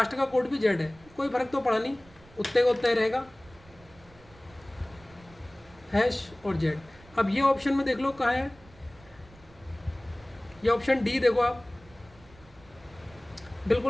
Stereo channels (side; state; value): right; noise; rumble, 25 dB below the sound